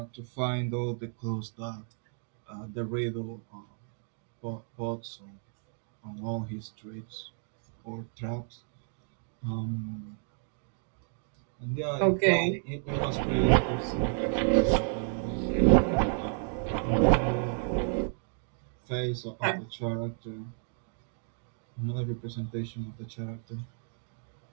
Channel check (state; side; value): silent; left; 57 dB below the other